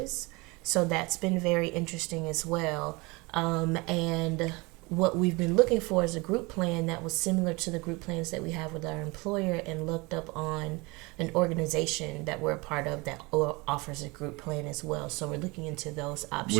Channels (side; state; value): left; quieter; 25.5 dB